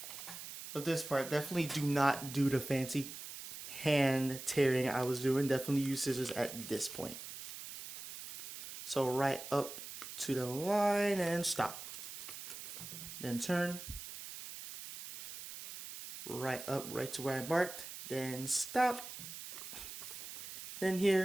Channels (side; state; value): right; noise; hiss, 10 dB below the sound